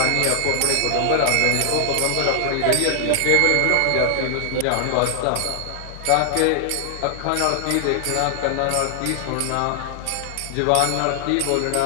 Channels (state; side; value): different; both; correlation 0.00